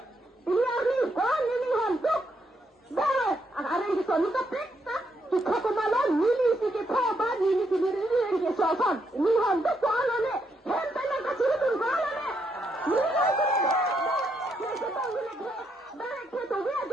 ini hari kau ni honda, dah, ada yang kita ni kapita, kita kemalan ni si kita apa ni si ni ni soalan, ni honda soalan ni, hentai nak kasih tu soalan ni, ni kita tahu ni, dah kita tahu dia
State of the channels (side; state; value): both; normal; correlation 0.77